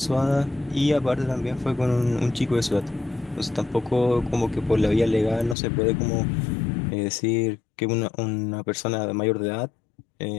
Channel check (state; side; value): drops out; right; at 5.6 s